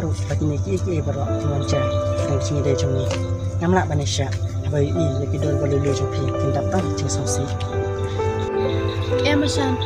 ru lagi ni ki berok mengajar. Yang cungi dari cungi. Ngamla banisha. Abai i lagi dol boleh lu cungi. Kita tak cungi songsi. Manshan,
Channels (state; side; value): identical; both; correlation 1.00